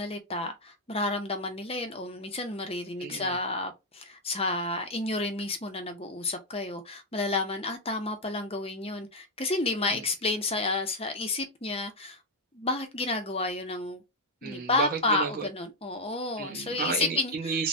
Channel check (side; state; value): both; normal; correlation 0.02